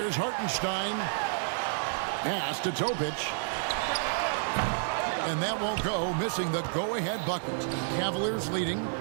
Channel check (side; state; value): left; silent; digital silence